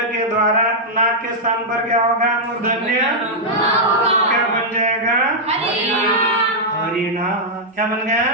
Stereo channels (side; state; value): both; normal; correlation -0.06